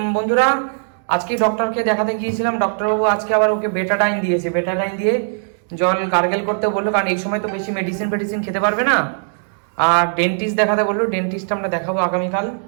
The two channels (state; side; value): silent; left; digital silence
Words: বন্ধুরা আজকে ডক্টরকে দেখাতে গিয়েছিলাম, ডক্টরবাবু আজকে আবার ওকে বেটাডাইন দিয়েছে। বেটাডাইন দিয়ে জল গার্গেল করতে বললো, কারণ এই সময় তো বেশি মেডিসিন খেতে পারবে না। আর ডেন্টিস্ট দেখাতে বললো, ডেন্টিস্ট আমরা দেখাবো আগামীকাল।